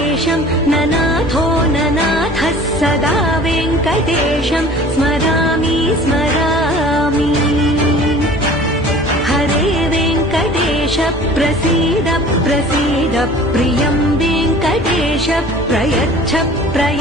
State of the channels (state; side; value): normal; both; correlation 0.45